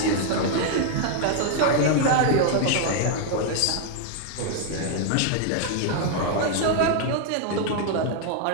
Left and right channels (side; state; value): both; different; correlation 0.00